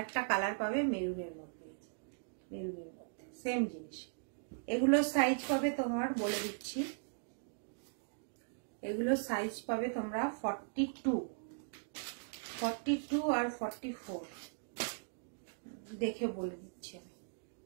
একটা কালার পাবে মেরুনের মধ্যে, মেরুনের মধ্যে সেম জিনিস। এগুলো সাইজ পাবে তোমার, বলে দিচ্ছি, এগুলো সাইজ পাবে তোমরা 42 আর 44। দেখে বলে দিচ্ছি আমি,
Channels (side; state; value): left; silent; digital silence